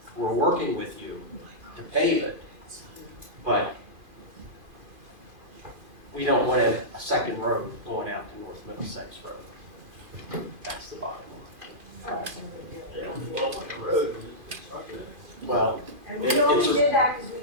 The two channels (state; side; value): late; left; 2.4 ms